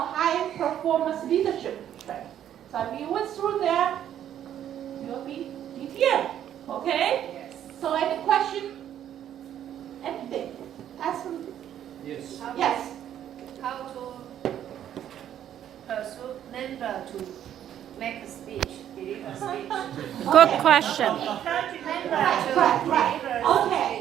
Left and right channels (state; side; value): quieter; left; 10.5 dB